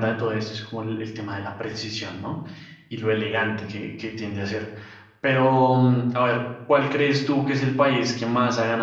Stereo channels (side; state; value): both; identical; correlation 1.00